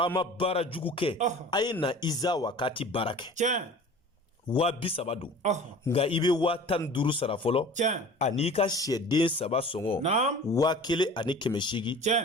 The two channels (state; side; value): normal; both; correlation 0.42